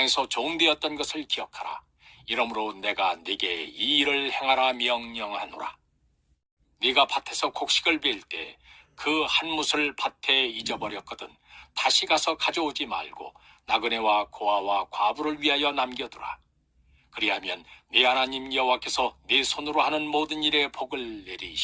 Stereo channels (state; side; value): identical; both; correlation 1.00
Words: 종되었던 것을 기억하라. 이러므로 내가 네게 이 일을 행하라 명령하노라. 네가 밭에서 곡식을 빌 때 그 한 못을 밭에 잊어버렸거든 다시 가서 가져오지 말고 나그네와 고아와 과부를 위하여 남겨두라. 그리하면 네 하나님 여호와께서 네 손으로 하는 모든 일에 복을